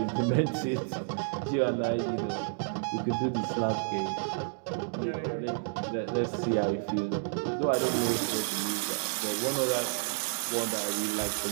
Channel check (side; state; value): left; silent; digital silence